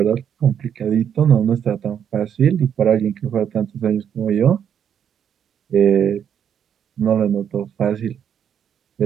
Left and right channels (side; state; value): left; quieter; 8.6 dB